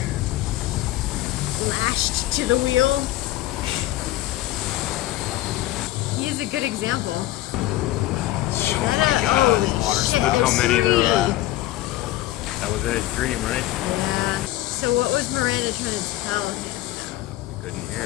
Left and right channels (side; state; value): right; quieter; 15.4 dB